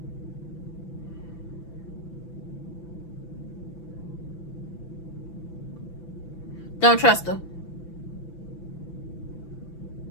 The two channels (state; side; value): late; right; 5.9 ms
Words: Don't trust her.